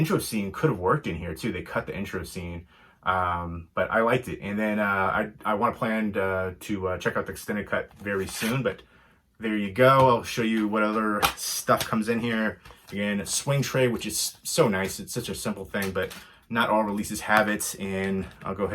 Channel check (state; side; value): identical; both; correlation 1.00